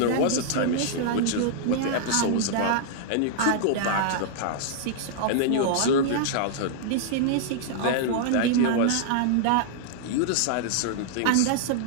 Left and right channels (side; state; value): both; different; correlation -0.01